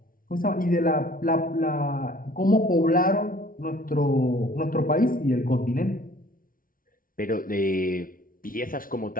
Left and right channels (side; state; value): right; late; 0.41 ms